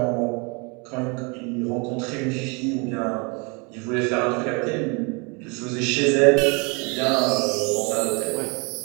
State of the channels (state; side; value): quieter; left; 31.2 dB